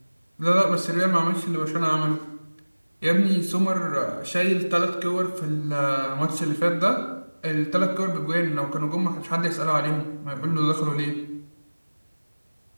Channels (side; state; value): both; inverted; correlation -1.00